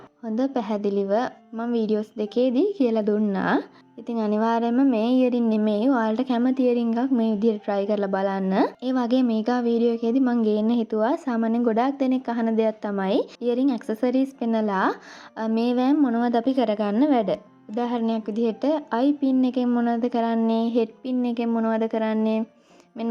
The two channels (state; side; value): identical; both; correlation 1.00